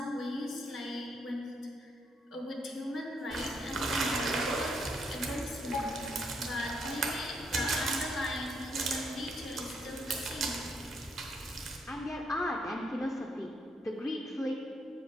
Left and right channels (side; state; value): both; normal; correlation 0.75